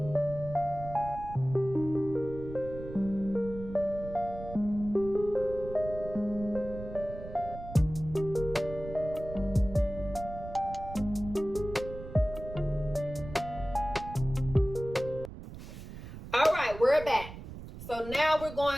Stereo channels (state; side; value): noise; right; rumble, 12 dB below the sound